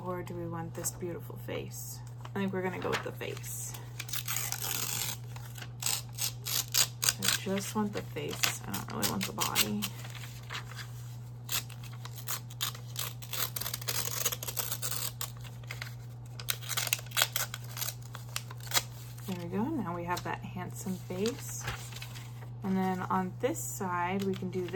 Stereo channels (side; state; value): both; identical; correlation 1.00